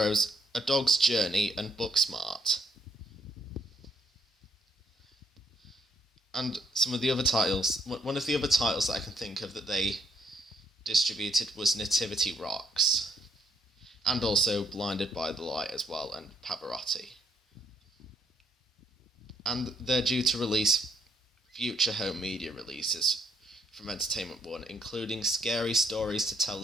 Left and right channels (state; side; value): normal; both; correlation 0.70